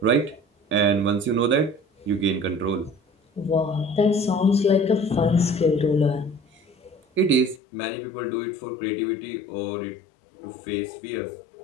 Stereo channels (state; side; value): drops out; right; at 7.6 s